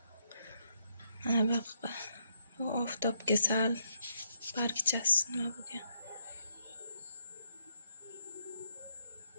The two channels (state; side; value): inverted; both; correlation -0.77